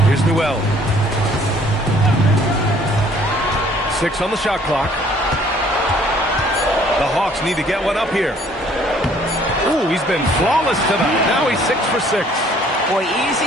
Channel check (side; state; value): both; normal; correlation 0.59